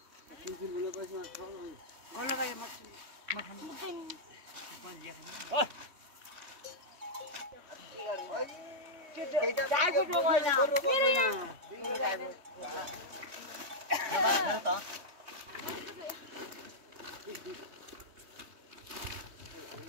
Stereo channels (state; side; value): late; left; 3.2 ms